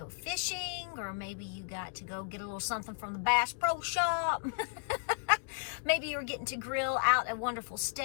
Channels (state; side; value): silent; right; digital silence